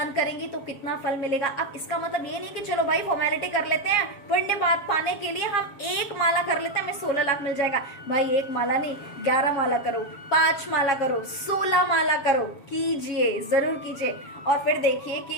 करेंगे तो कितना फल मिलेगा। अब इसका मतलब ये नहीं कि चलो भाई फॉर्मेलिटी कर लेते हैं, पुण्य बात पाने के लिए हम एक माला कर लेते हैं, हमें 16 लाख मिल जाएगा। भाई एक माला नहीं, 11 माला करो, 5 माला करो, 16 माला करो, कीजिए, जरूर कीजिए। और फिर देखिए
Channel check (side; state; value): right; late; 7.2 ms